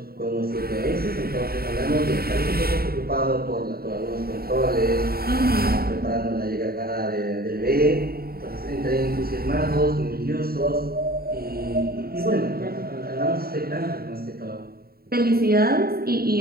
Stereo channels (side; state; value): left; late; 0.44 ms